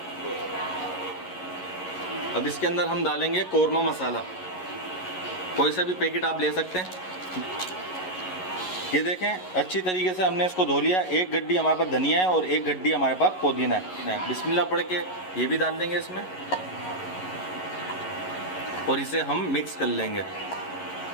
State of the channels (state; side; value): late; right; 11 ms